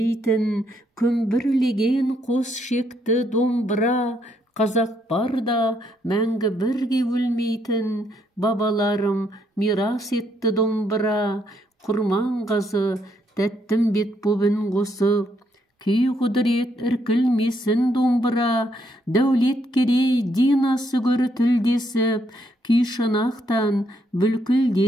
күмбірлеген қос шекті домбыра, қазақ барда мәңгі бірге өлмейтін, бабаларым мирас етті домбыра, құрман қазы тәттім бет бобын қосып, күй құдырет іркілмесін домбыра, дәулет керей динасы көрі тілдесіп, күй шанақтан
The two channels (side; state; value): both; normal; correlation 0.73